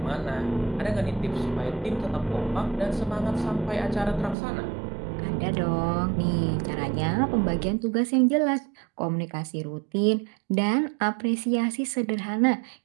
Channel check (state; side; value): drops out; left; at 4.4 s